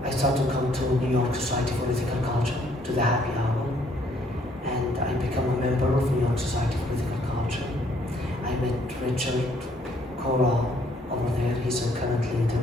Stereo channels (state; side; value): normal; both; correlation 0.65